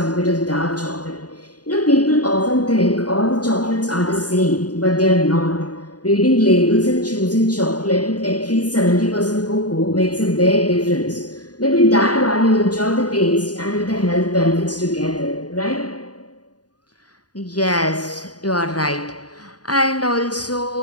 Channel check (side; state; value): right; late; 0.69 ms